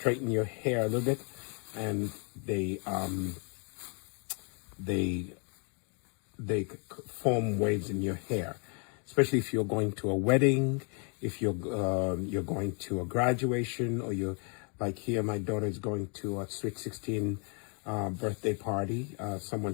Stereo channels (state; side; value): quieter; right; 38.0 dB